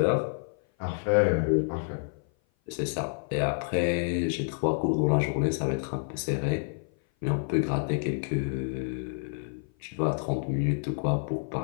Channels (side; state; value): right; silent; 56 dB below the other